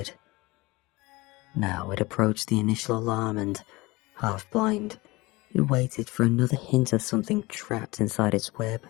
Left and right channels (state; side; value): quieter; right; 22.2 dB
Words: Now it approached the initial alarm and, half blind, it waited for another hint of something trapped inside its web.